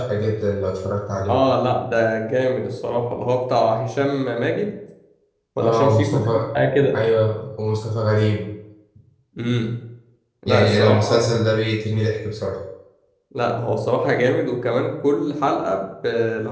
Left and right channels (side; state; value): both; identical; correlation 1.00